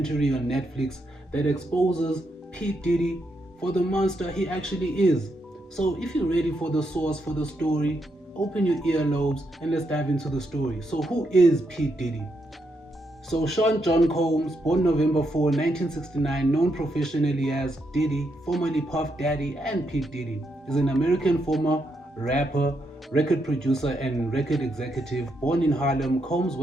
on Netflix that exposes P. Diddy for the monster he actually is. So if you're ready for the source for the story, open your earlobes and let's dive into the story. So who is P. Diddy? So Sean John Combs, born November 4, 1969, known professionally as Diddy, formerly Puff Daddy and P. Diddy, is an American former rapper, record producer, and record executive. Born in Harlem, Combs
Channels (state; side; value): normal; both; correlation 0.80